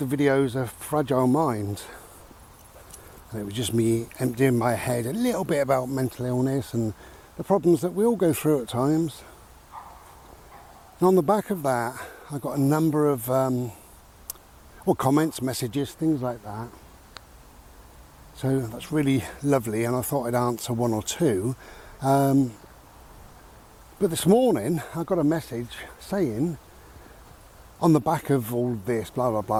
videos A Fragile Mind. And it was just me emptying my head a little bit about mental illness and the problems that we all go through at times. And on the back of that, I got a number of comments, messages, things like that. So that's really lovely, and I thought I'd answer 1 or 2. But this morning I got a message saying, on the back of all this, blah blah blah,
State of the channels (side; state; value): both; identical; correlation 1.00